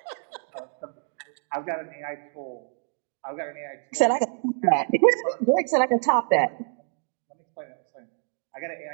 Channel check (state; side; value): silent; left; 58 dB below the other